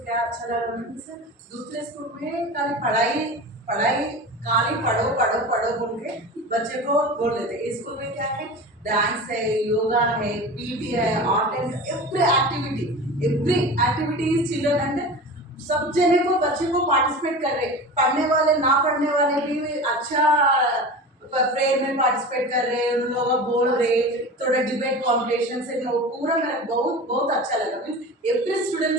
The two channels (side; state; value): both; normal; correlation 0.32